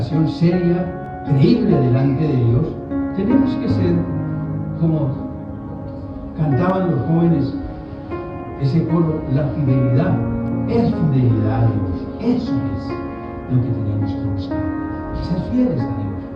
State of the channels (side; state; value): both; identical; correlation 1.00